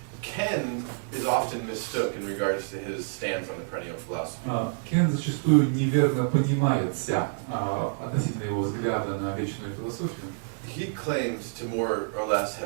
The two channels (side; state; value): left; silent; digital silence